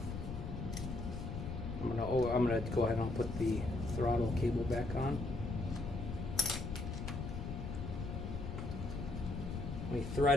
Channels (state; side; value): noise; left; rumble, 5 dB below the sound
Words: gonna go ahead and put the throttle cable back on. Let me